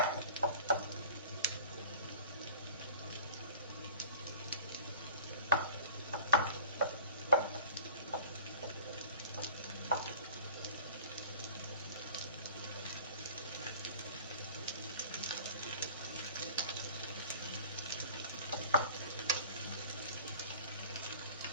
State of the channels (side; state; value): both; inverted; correlation -0.42